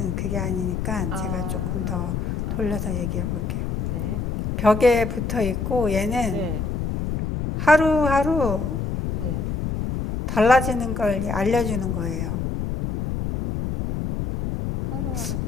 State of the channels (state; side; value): noise; left; rumble, 2 dB below the sound